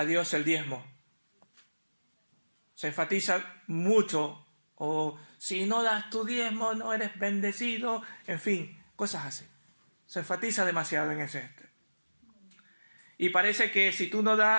Dios el diezmo. Se enfatiza mucho, o si no das tu diezmo no eres bendecido, en fin, cosas así. Se enfatiza demasiado en ese. Y parece que si tú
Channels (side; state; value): both; inverted; correlation -1.00